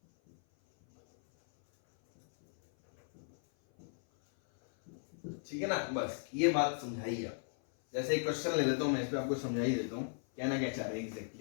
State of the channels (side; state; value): right; silent; 54 dB below the other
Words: ठीक है ना? बस ये बात समझाइए आप। जैसे एक क्वेश्चन ले लेता हूं मैं, इस पे आपको समझा ही देता हूं कहना क्या चाह रहे हैं